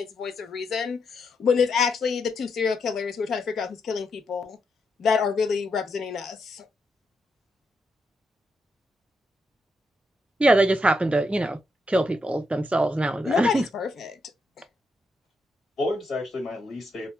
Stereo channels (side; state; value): both; normal; correlation 0.81